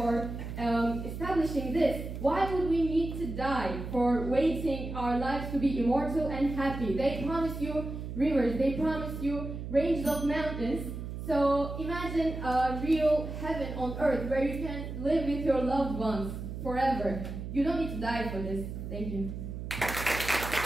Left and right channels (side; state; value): right; noise; hum, 7 dB below the sound